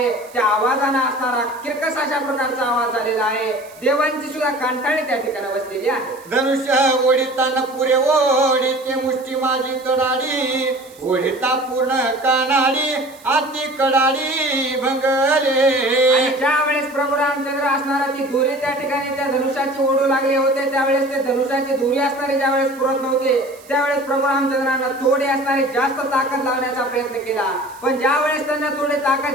त्या आवाजाने असणारा किरकस अशा प्रकारचा आवाज झालेला आहे, देवांची सुद्धा कांटाळी त्या ठिकाणी बसलेली आहे. धनुष्य ओढिताना पुरे ओढीते मुष्टी माझी कडाडी, ओढिता पूर्ण कानाडी आती कडाडी भंगले. आणि ज्यावेळेस प्रभू रामचंद्र असणारा ती दोरी त्या ठिकाणी त्या धनुष्याची ओढू लागले होते त्यावेळेस ते धनुष्याची दोरी असणारी ज्यावेळेस पुरत नव्हते त्यावेळेस प्रभू रामचंद्रांना थोडी असणारी जास्त ताकद लावण्याचा प्रयत्न केला, पण ज्यावेळेस त्यांना थोडी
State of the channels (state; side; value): noise; right; hiss, 24 dB below the sound